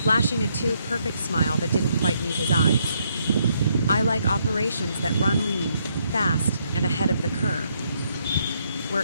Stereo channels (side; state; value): both; inverted; correlation -0.74